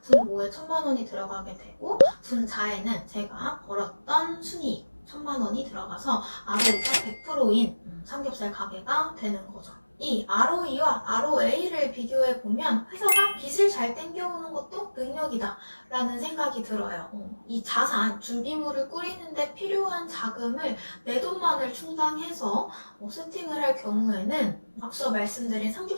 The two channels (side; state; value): both; inverted; correlation -1.00